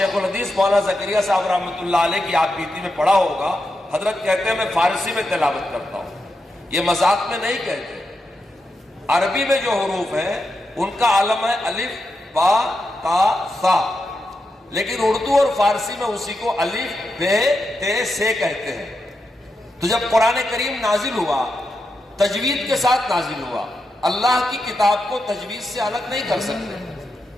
الحدیث مولانا زکریا صاحب رحمۃ اللہ علیہ کی آپ بیتی میں پڑھا ہوگا, حضرت کہتے ہیں میں فارسی میں تلاوت کرتا ہوں. یہ مذاق میں نہیں کہتے, عربی میں جو حروف ہیں ان کا عالم ہے الف با تا سا، لیکن اردو اور فارسی میں اسی کو الف بے تے سے کہتے ہیں۔ تو جب قرآن کریم نازل ہوا تجوید کے ساتھ نازل ہوا، اللہ کی کتاب کو تجوید سے الگ نہیں کر سکتے۔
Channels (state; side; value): normal; both; correlation 0.86